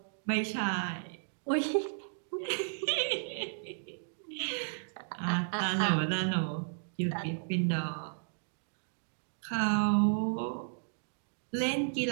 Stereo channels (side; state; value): left; silent; digital silence